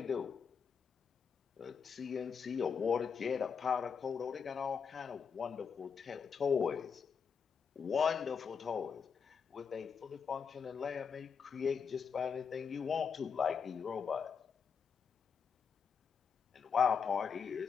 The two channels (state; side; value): quieter; right; 6.3 dB